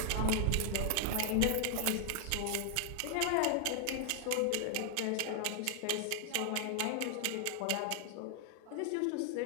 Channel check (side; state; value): both; different; correlation 0.00